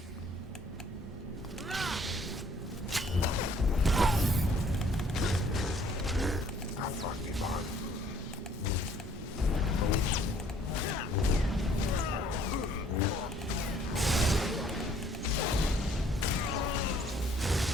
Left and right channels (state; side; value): normal; both; correlation 0.60